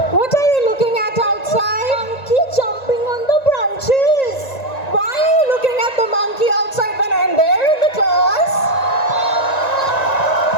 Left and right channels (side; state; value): right; late; 1.9 ms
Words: what are you looking at outside? Monkey jumping on the branches. Why are you looking at the monkey outside when I'm there in the class?